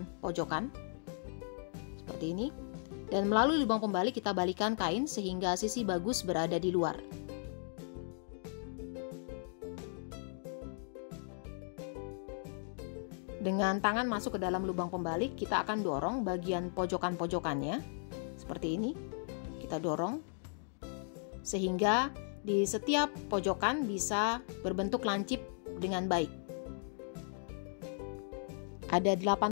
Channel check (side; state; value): right; silent; digital silence